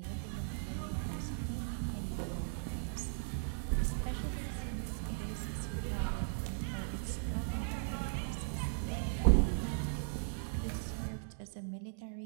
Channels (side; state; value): left; silent; digital silence